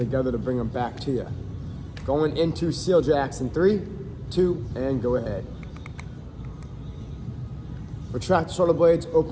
to bring them back to you. Going into seal jacks in 3, 2, and go ahead. Retract the shoulder blades,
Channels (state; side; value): identical; both; correlation 1.00